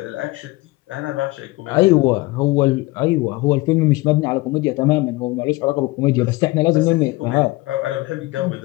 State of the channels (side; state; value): right; quieter; 21.3 dB